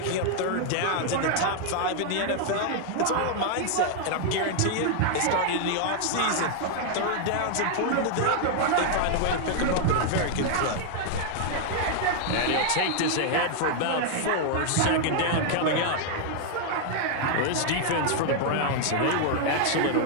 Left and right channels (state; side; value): different; both; correlation 0.00